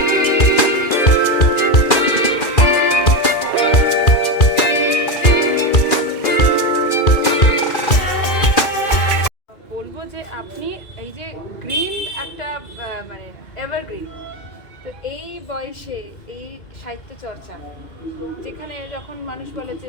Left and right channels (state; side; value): late; right; 2.4 ms